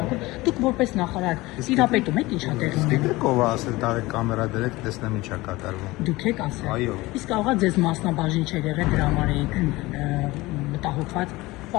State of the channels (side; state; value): right; quieter; 20.3 dB